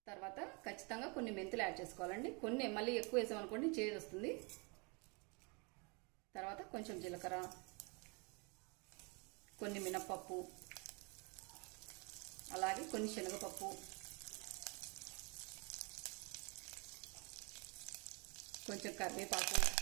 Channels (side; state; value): left; quieter; 31.7 dB